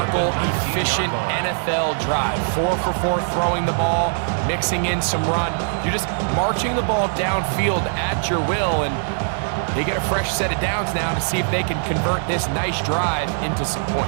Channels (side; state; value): left; silent; 56 dB below the other